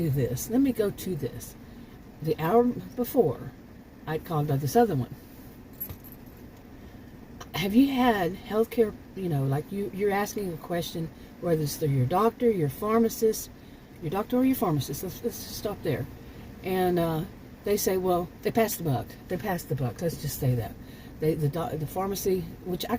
this. Let me go to this. The hour before, I called about this other one. Have you had healthcare, like you're asking a question, whether it's through your doctor, your pharmacist, your doctor or your pharmacist. Let's just stop there. And they say, well, they passed the buck. They passed the buck. Let's just say that. The pharmacy, which I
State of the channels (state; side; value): identical; both; correlation 1.00